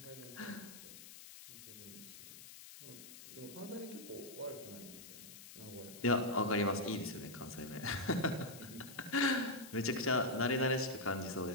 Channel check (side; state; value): left; noise; hiss, 15 dB below the sound